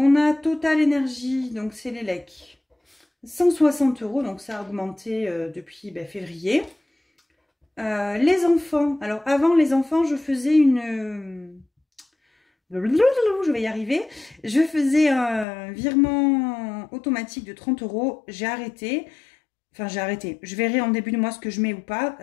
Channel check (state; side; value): drops out; right; at 15.5 s